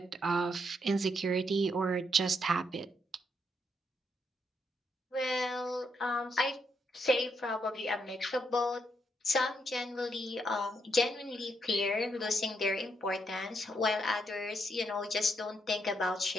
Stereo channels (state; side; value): normal; both; correlation 0.77